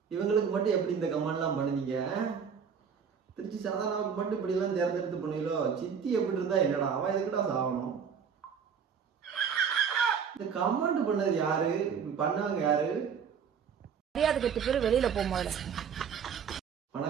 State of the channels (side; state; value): left; quieter; 6.9 dB